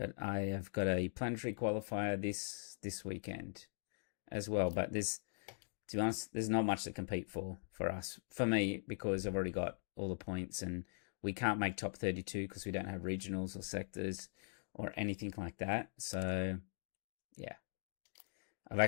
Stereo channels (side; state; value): right; silent; digital silence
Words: I have got a planetary qualifier this weekend as well. But to be honest, there's not much to compete for us. For me, because I've already got all the points and we can't make top 32 because we don't have regionals or sectors or anything like that. So, yeah. I've